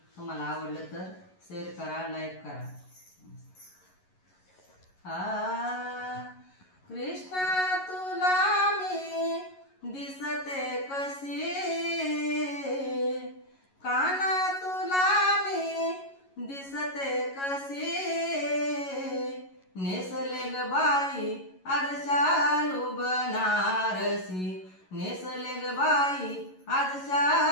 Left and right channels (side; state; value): right; late; 11 ms